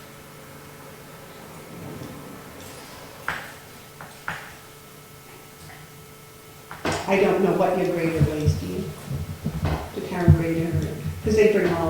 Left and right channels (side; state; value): both; identical; correlation 1.00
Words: I don't know what your grader weighs, do you? The town grader, because they bring all